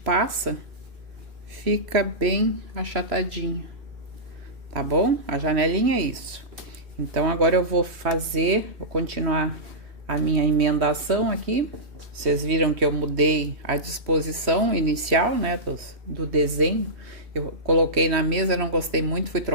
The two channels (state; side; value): late; left; 3.1 ms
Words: fica bem achatadinho, tá bom? A janelinha é isso. Então, agora eu vou continuar a minha emendação aqui. Vocês viram que eu mudei a disposição inicial, né, do desenho. Eu coloquei na mesa, não gostei muito, fui